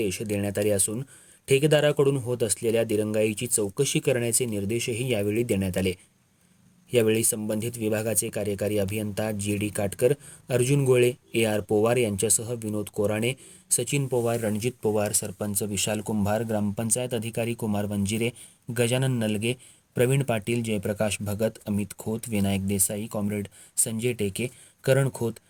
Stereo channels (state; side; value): identical; both; correlation 1.00